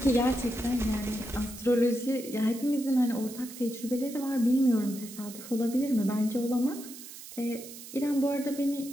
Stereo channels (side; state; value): right; noise; hiss, 14 dB below the sound